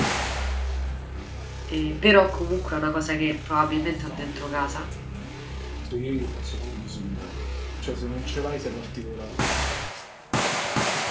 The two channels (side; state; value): both; identical; correlation 1.00